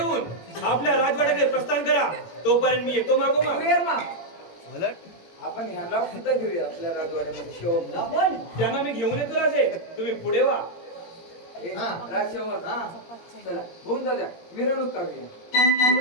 आपल्या राजवाड्याकडे प्रस्थान करा. तोपर्यंत मी येतो मागोमाग. क्लिअर मा आपण ह्याला सुद्धा घेऊया आपल्या राजवाड्यामध्ये शिवमला. आपण त्यांना मी घेऊन येतो राजे. तुम्ही पुढे वा. हा. राजशेवर हा चला होऊन जाऊ द्या मिरवणूक काढूया.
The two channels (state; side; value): late; right; 18 ms